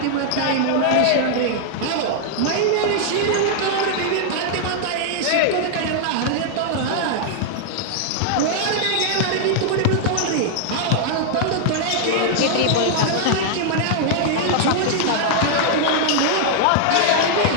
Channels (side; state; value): both; different; correlation -0.01